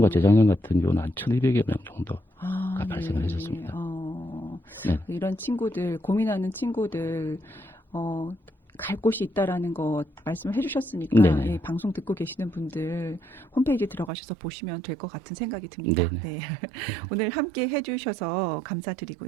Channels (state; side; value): drops out; left; at 14.1 s